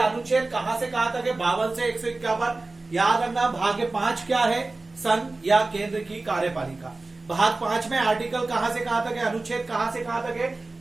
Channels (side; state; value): left; quieter; 3.3 dB